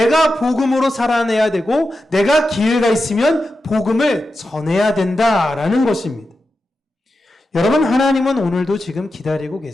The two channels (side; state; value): both; normal; correlation 0.90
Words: 복음으로 살아내야 되고 내가 기회가 있으면 복음을 전해야 된다라는 것입니다. 여러분, 하나님은 오늘도 지금 기다리고